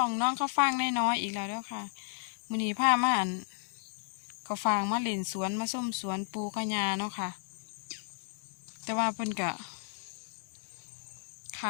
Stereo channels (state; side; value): silent; right; digital silence